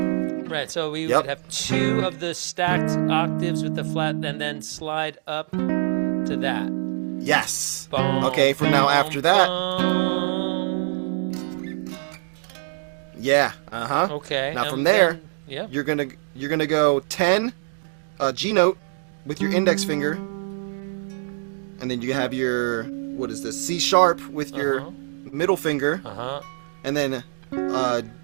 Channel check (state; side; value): silent; left; digital silence